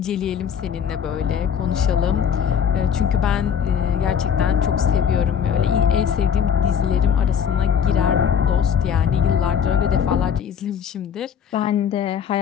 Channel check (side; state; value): right; quieter; 7.8 dB